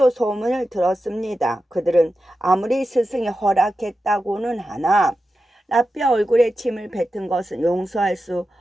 소문을 들었습니다. 그들은 아무리 스승이 허락했다고는 하나 랍비의 얼굴에 침을 뱉은 것은 용서할 수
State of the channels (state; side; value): normal; both; correlation 0.91